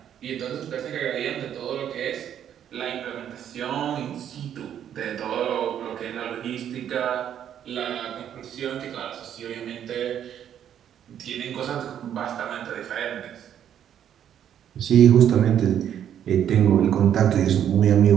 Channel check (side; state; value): left; quieter; 9.7 dB